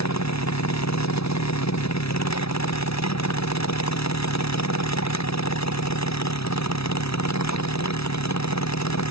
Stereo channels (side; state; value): right; late; 0.77 ms